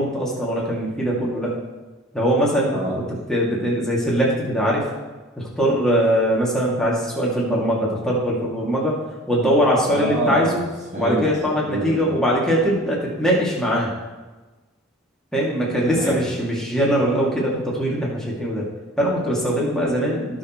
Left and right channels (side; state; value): both; normal; correlation 0.44